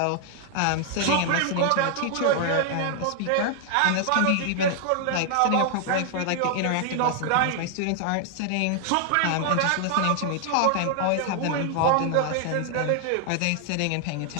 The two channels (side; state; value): both; different; correlation 0.00